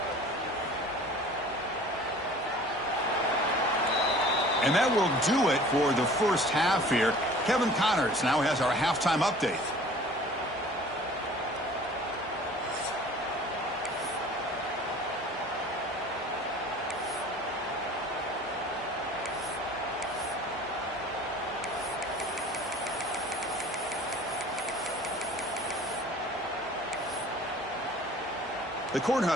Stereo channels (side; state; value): both; normal; correlation 0.47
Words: And that will do it for the first half here. Kevin Connors now has our halftime update. The